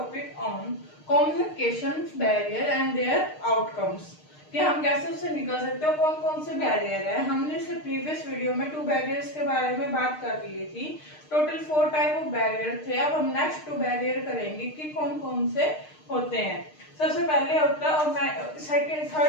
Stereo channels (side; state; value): right; late; 6.5 ms